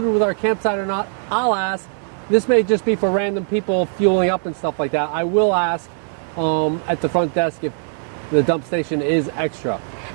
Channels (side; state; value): left; silent; digital silence